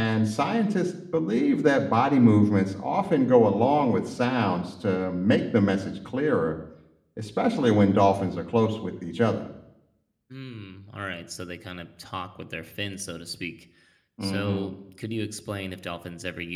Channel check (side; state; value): both; identical; correlation 1.00